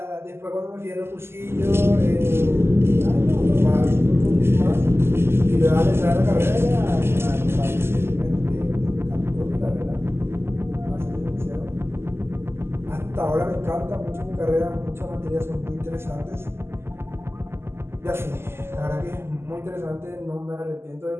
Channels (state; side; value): late; left; 0.12 ms